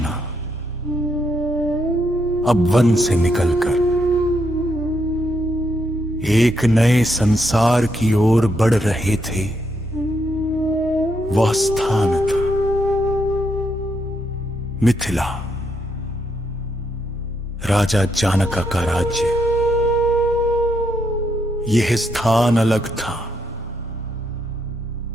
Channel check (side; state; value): both; normal; correlation 0.78